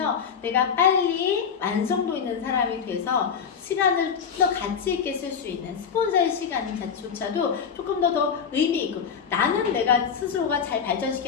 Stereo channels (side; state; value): right; quieter; 6.9 dB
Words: 내가 빨리 완성도 있는 사람이 돼서 시간을 좀 더 가치 있게 쓸 수 있는 스폰서의 시간조차도 조금 더 의미 있고 나는 내가 스스로가 잘